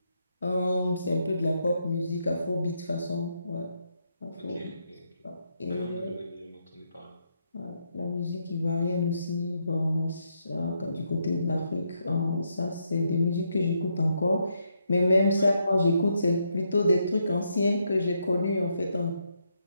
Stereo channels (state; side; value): inverted; both; correlation -0.79